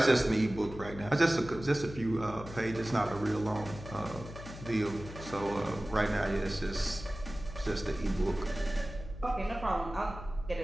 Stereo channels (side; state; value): left; noise; hum, 12 dB below the sound